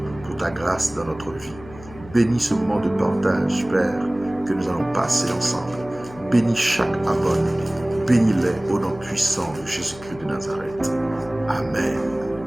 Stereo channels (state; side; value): noise; left; hum, 18 dB below the sound